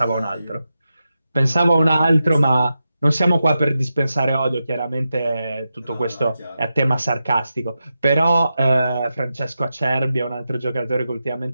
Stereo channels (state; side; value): inverted; both; correlation -0.89